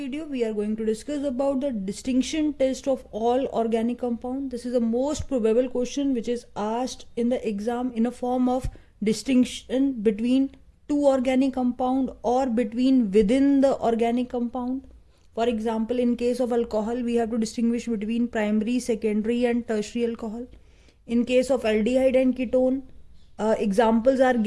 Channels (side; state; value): both; identical; correlation 1.00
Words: we are going to discuss about the distinction test of all organic compound. This is the most probable question which is asked in the exam in a form of distinction between two organic compound or between within the organic compound. For example, in case of alcohol, we have to distinguish between primary, secondary and tertiary alcohol. In case of aldehyde and ketone, examples are